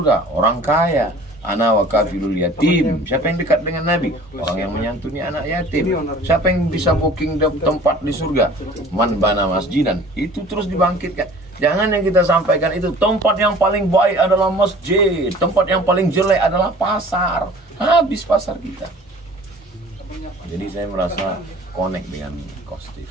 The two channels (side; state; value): both; normal; correlation 0.47